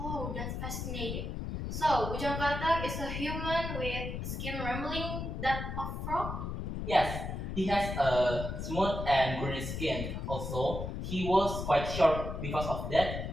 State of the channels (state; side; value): noise; left; rumble, 4 dB below the sound